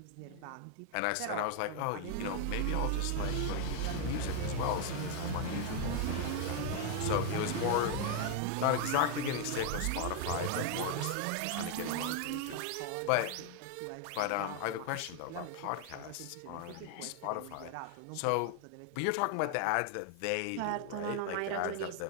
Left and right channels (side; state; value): both; different; correlation 0.00